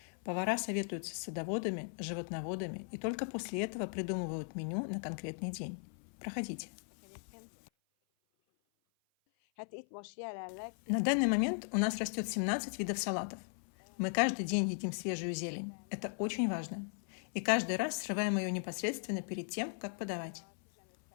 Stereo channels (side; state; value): right; silent; 53 dB below the other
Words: Повара советуются с садоводами, животноводами и только после этого придумывают меню на конкретный день. Проходите. На данный момент у нас растет 17 видов салатов. Мы каждый день едим свежую зелень. Это очень важно. И каждый раз срываем ее непосредственно перед тем, как подавать.